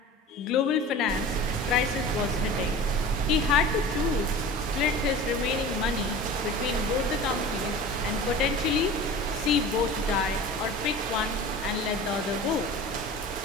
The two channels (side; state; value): both; normal; correlation 0.37